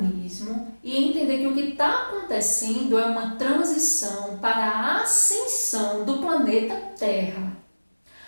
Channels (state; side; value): inverted; both; correlation -1.00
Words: e entender que o que está acontecendo é uma transição para a ascensão do planeta Terra.